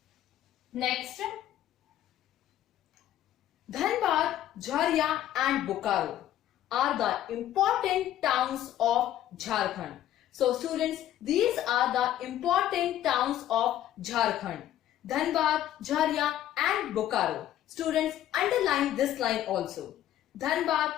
Next, Dhanbad, Jharia and Bokaro are the important towns of Jharkhand. So students, these are the important towns of Jharkhand. Dhanbad, Jharia and Bokaro. Students, underline this line also. Dhanbad,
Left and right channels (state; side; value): quieter; right; 12.2 dB